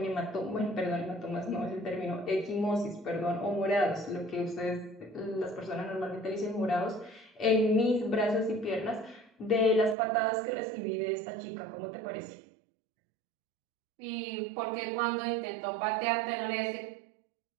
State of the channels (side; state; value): left; drops out; at 10.0 s